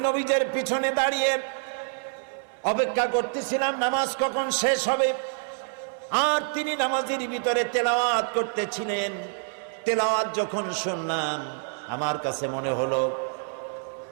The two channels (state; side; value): silent; left; 60 dB below the other